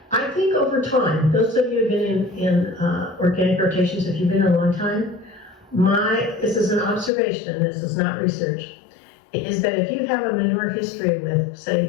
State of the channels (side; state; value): right; drops out; at 7.1 s